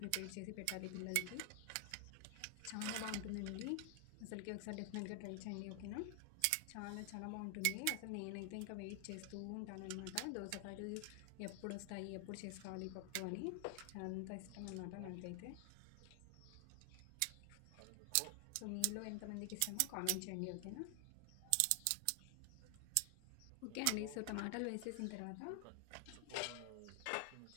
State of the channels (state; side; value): different; both; correlation 0.00